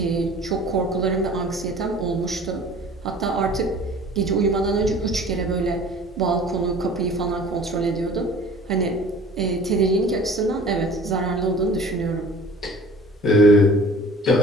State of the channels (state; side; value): normal; both; correlation 0.46